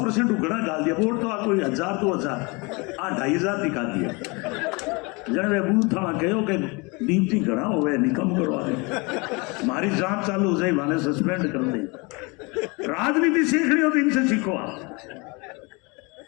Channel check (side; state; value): right; quieter; 28.2 dB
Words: उगड़ा डाल दिया, वोट तो कोई 1000 2000 2500 दिखा दिया। जन वे बूथ था कहो कि ड्यूटी घड़ा हुए निकम करवा दे, हमारी जांच चालू हो जाए, माने सस्पेंड कर दे। राजनीति सीखनी हो तो इनसे सीखो आप।